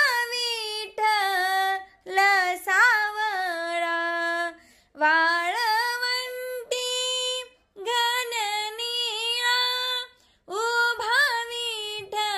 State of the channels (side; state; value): both; identical; correlation 1.00